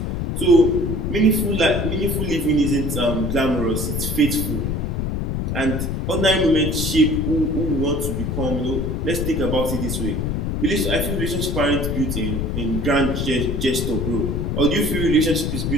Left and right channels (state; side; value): noise; left; rumble, 1 dB below the sound